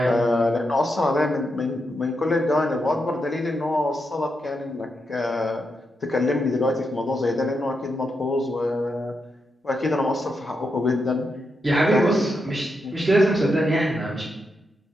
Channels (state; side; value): normal; both; correlation 0.84